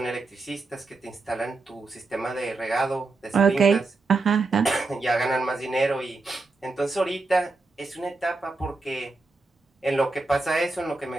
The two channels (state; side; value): quieter; left; 3.5 dB